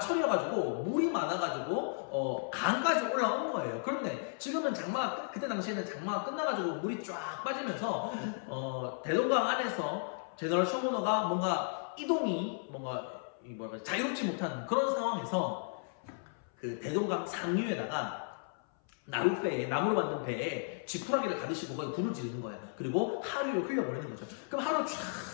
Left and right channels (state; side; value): silent; right; 55 dB below the other